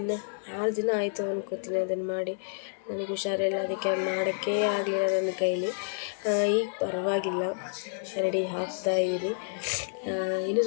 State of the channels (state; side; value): silent; right; digital silence